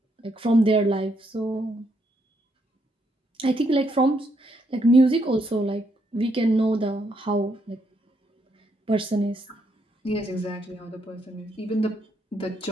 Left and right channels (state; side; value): normal; both; correlation 0.75